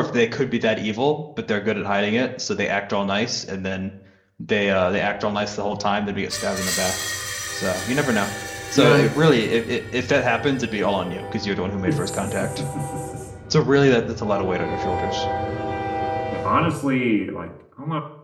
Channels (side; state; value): both; identical; correlation 1.00